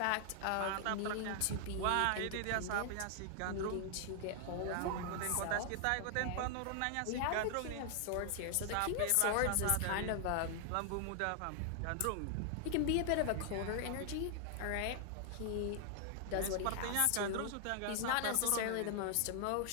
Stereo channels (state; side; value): different; both; correlation 0.00